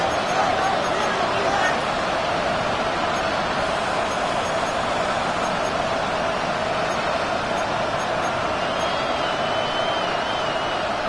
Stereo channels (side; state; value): both; identical; correlation 1.00